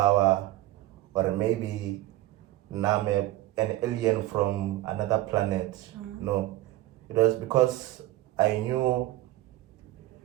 or maybe now I'm an alien from another planet. No, it was because I knew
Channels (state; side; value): quieter; left; 16.0 dB